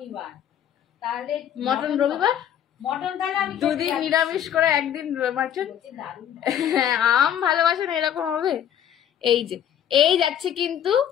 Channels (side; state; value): right; quieter; 9.8 dB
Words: তাহলে মটন রবিবার, মটন তাহলে আমি দুদিন নিরামিষ করে একদিন মাটন। আম ভালোবাসে না এরকম হবে? এই যে এই যাচ্ছে কিন্তু,